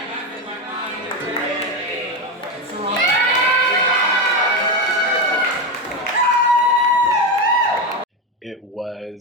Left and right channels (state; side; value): normal; both; correlation 0.13